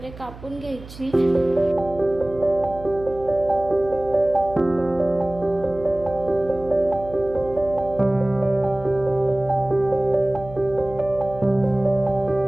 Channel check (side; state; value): right; noise; hum, 17 dB below the sound